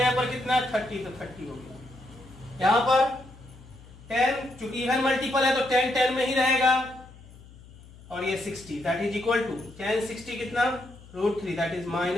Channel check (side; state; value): left; noise; hum, 21 dB below the sound